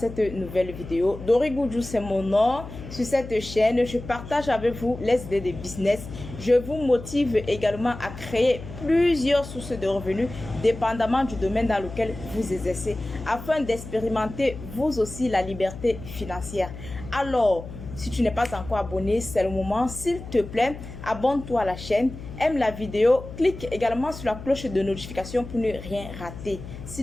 nouvelle vidéo. Dori Goudjou, c'est mon nom. Sur cette chaîne, je partage avec vous les idées de business. Je vous motive également à créer plusieurs sources de revenus dépendamment du domaine dans lequel vous exercez afin d'expérimenter vous aussi la liberté financière. Alors, si tu n'es pas encore abonné, c'est le moment. S'il te plaît, abonne-toi à la chaîne, aime la vidéo, clique également sur la cloche de notification pour ne rien rater.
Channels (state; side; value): noise; left; hum, 12 dB below the sound